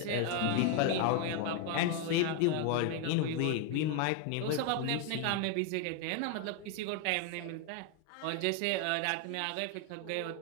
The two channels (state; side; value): different; both; correlation 0.01